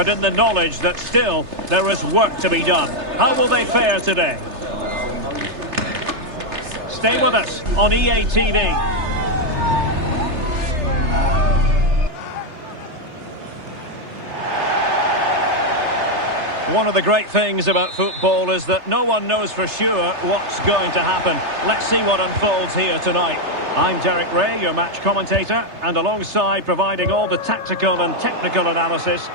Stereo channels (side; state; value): left; late; 3.3 ms